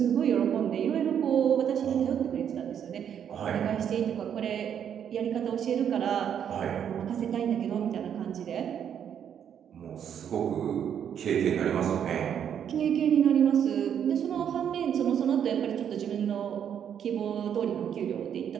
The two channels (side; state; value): left; quieter; 8.7 dB